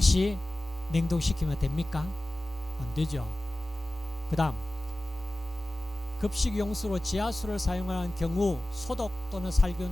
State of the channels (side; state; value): both; normal; correlation 0.96